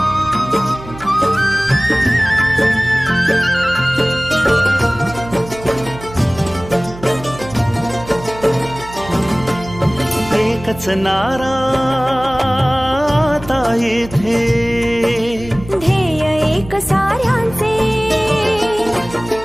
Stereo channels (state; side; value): noise; right; hum, 15 dB below the sound